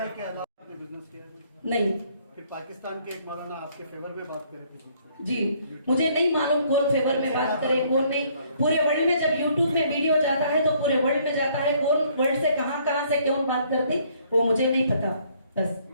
के अलावा आपने बिजनेस किया है? नहीं, फिर पाकिस्तान के एक मौलाना आपके फेवर में बात करे थे जी मुझे नहीं मालूम कौन फेवर में बात करे कौन नहीं। पूरे वर्ल्ड में जब यूट्यूब पे वीडियो जाता है तो पूरे वर्ल्ड में जाता है, कौन वर्ल्ड से कहां से कौन बात करती वो मुझे नहीं पता। बस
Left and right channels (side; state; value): both; inverted; correlation -0.64